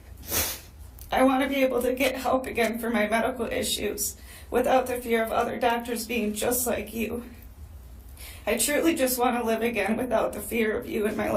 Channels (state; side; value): identical; both; correlation 1.00